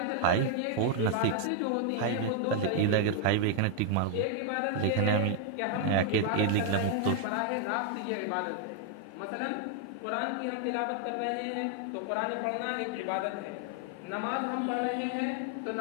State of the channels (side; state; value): both; different; correlation 0.00